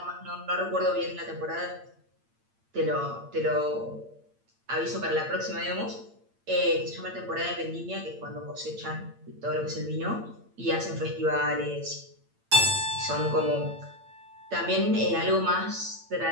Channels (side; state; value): left; late; 8.8 ms